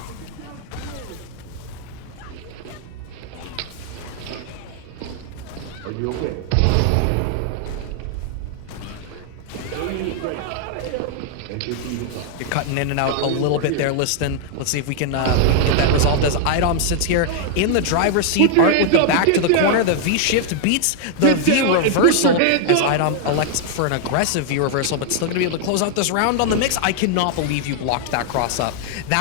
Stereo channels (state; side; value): different; both; correlation 0.00